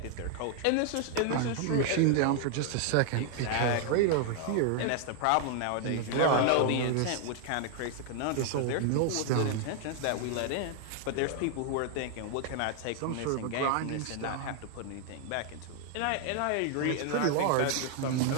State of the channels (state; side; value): different; both; correlation 0.00